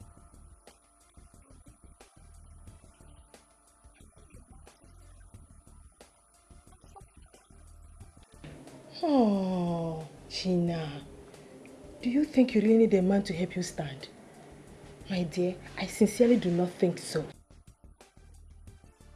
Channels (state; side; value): identical; both; correlation 1.00